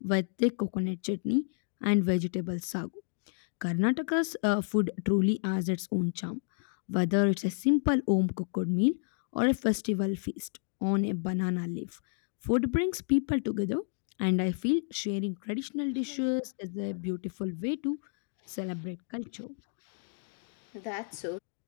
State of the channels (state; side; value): silent; right; 57 dB below the other